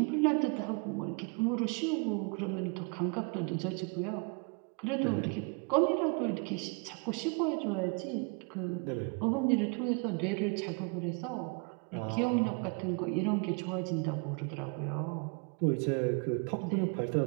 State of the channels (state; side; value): quieter; left; 34.1 dB